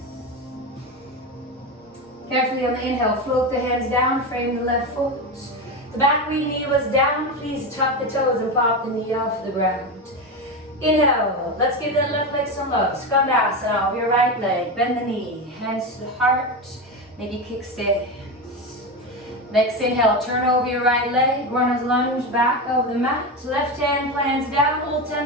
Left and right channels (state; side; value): normal; both; correlation 0.18